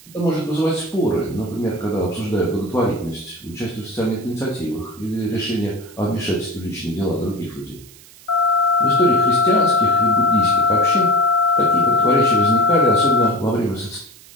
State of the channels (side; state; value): right; noise; hiss, 23 dB below the sound